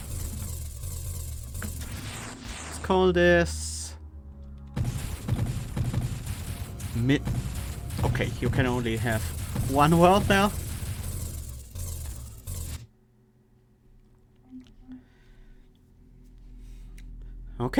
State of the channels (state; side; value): identical; both; correlation 1.00